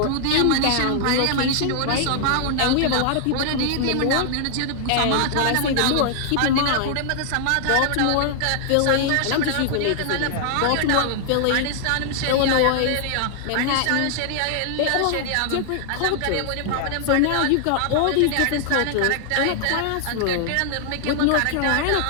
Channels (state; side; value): different; both; correlation 0.00